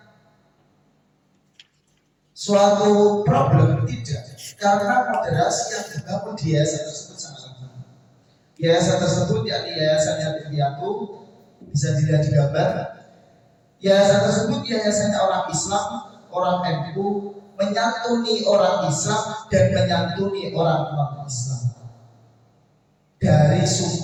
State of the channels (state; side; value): identical; both; correlation 1.00